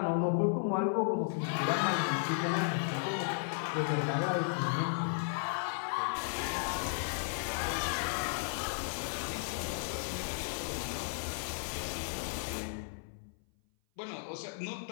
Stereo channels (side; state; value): right; silent; 55 dB below the other